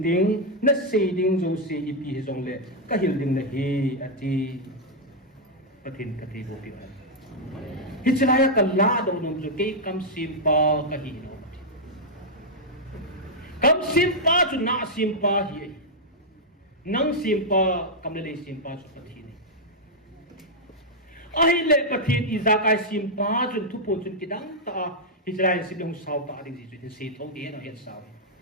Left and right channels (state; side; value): normal; both; correlation -0.04